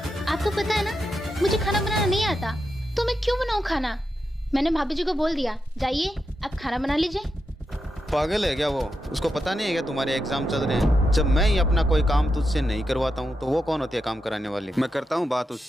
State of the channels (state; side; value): normal; both; correlation 0.86